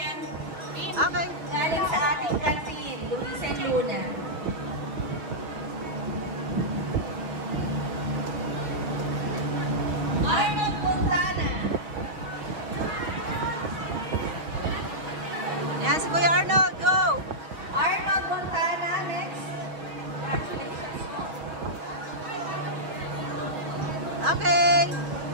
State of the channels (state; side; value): late; left; 6.3 ms